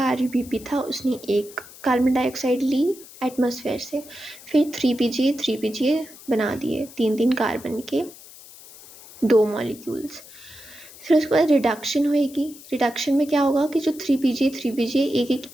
RUBP था उसने 1 कार्बन डाइऑक्साइड ली एटमॉस्फेयर से, फिर 3 PGA बना दिए 3-3 कार्बन के 2 मॉलिक्यूल्स। फिर उसके बाद रिडक्शन होएगी। रिडक्शन में क्या होगा कि जो 3PGA एक एक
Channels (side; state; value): left; noise; hiss, 19 dB below the sound